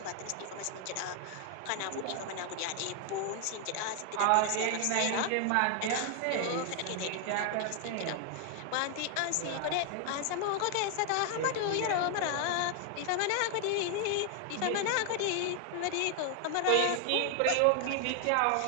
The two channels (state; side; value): different; both; correlation 0.00